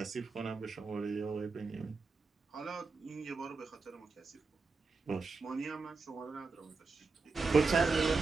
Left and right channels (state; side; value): quieter; left; 4.2 dB